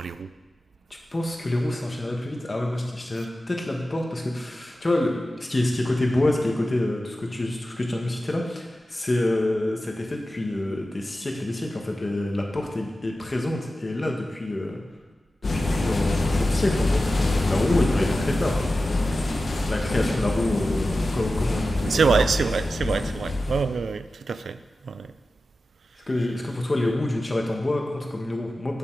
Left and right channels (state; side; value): normal; both; correlation 0.93